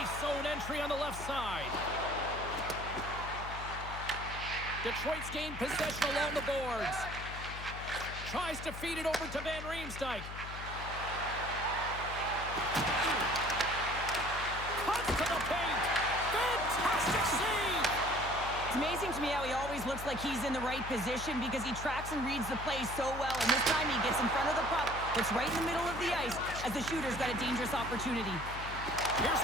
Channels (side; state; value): left; noise; hum, 9 dB below the sound